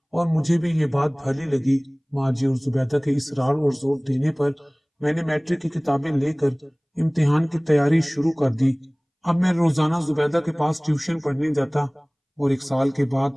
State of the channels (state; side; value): identical; both; correlation 1.00